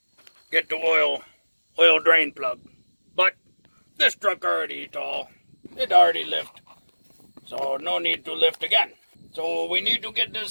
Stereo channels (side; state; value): both; inverted; correlation -1.00